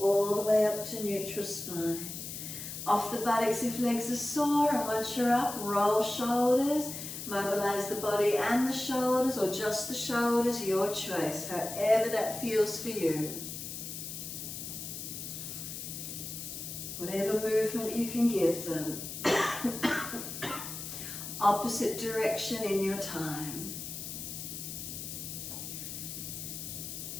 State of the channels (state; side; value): noise; left; hiss, 8 dB below the sound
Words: the way up to neutral spine. Off the buttocks if legs are sore, and once you're up, roll shoulders, mobilise the body and the shoulders, or just the shoulders, your choice, however that feels for you. Whatever movement you can give them. Opposite direction in your time.